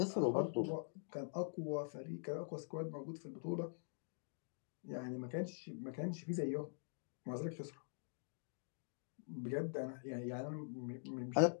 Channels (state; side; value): silent; right; digital silence